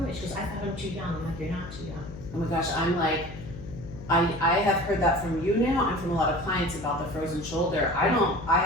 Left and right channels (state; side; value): noise; left; hum, 13 dB below the sound